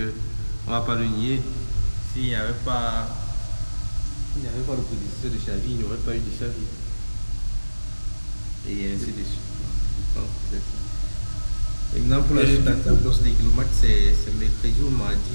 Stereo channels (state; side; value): inverted; both; correlation -1.00